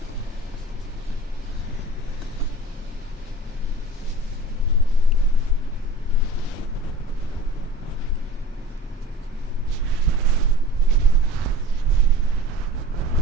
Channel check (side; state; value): both; normal; correlation 0.41